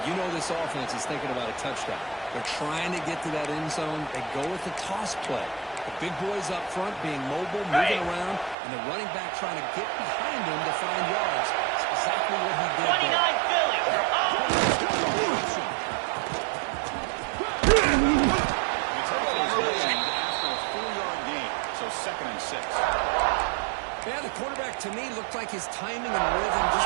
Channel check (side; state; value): left; drops out; at 8.6 s